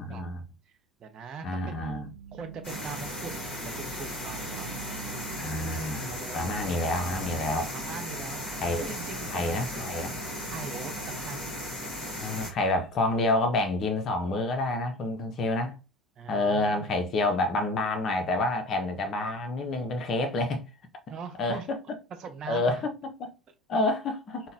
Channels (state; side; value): normal; both; correlation 0.40